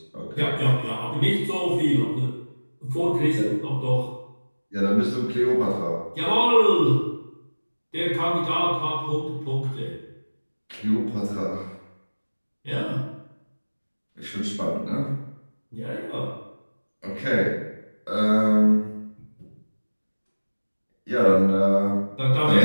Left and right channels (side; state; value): both; inverted; correlation -1.00